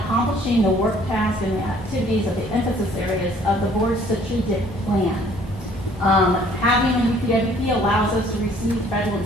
accomplishing the work tasks and the activities of the emphasis areas of the board's strategic plan. Having a UPWP allows us to receive federal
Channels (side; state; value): both; normal; correlation 0.58